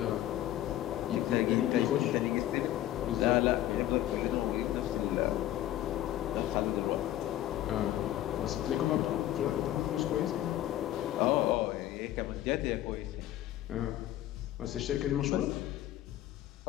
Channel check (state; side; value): quieter; right; 13.4 dB